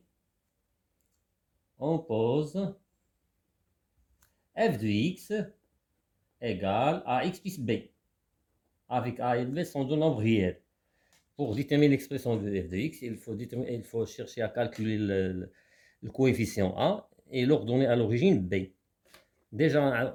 on pose f de x égale ax plus b, avec a et b sont deux nombres réels. Pour déterminer l'expression de f de x, il faut chercher à calculer le coefficient a et l'ordonner à l'origine b. Déjà,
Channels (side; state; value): both; identical; correlation 1.00